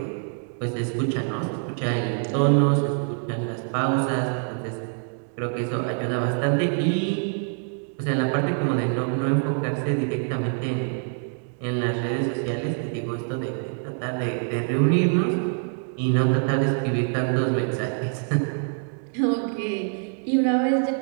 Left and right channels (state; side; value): silent; left; 55 dB below the other